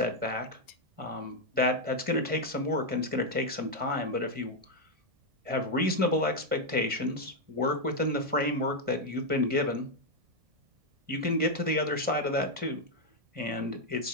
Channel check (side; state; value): left; late; 1.5 ms